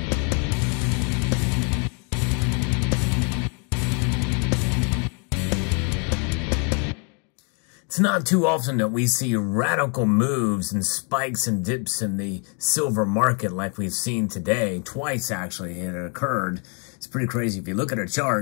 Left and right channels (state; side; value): quieter; right; 38.2 dB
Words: It's not too often that we see radical moves and spikes and dips in the silver market like we've seen today. Twice, actually, it occurred. It's pretty crazy. If you look at a